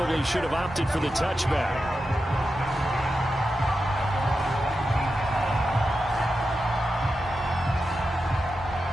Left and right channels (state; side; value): normal; both; correlation 0.90